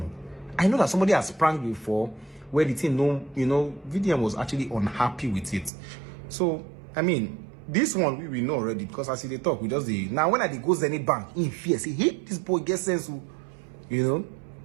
I know that somebody has pranked before, where the thing, VDM was actually unhappy with it. So I mean, this one we know already, because as they talk, we just now when I goes any bank in fear, say, hey, this boy gets sense, you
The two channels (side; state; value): left; drops out; at 5.7 s